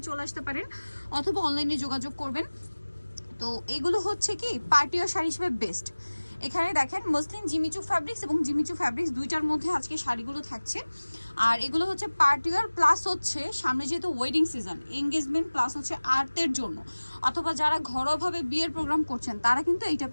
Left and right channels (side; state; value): both; inverted; correlation -1.00